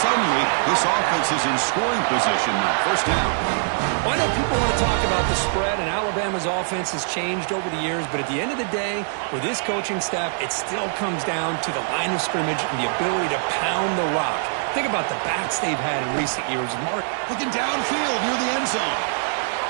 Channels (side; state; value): left; silent; 63 dB below the other